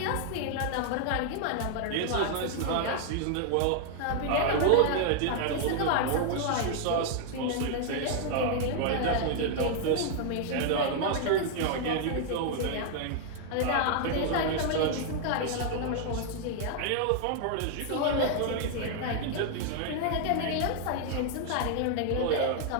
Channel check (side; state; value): both; different; correlation 0.00